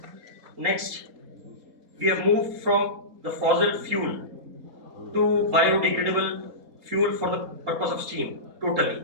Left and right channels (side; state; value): left; late; 4.1 ms